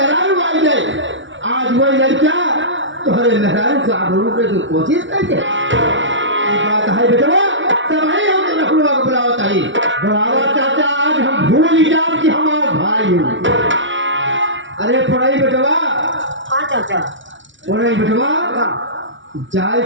आई जाए, आज वही लड़किया तुम्हारे मेहरारू को आबरू के जो कोशिश करके बात है बेटवा, तब वही हम हुलवा को बुलावा चाहिए। बुलावा चाचा, आज हम भूल जाओ कि हमारा भाई है। अरे पढ़ाई बेटवा। हाँ चाचा। पढ़ाई बेटवा, जाए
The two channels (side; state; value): left; late; 0.55 ms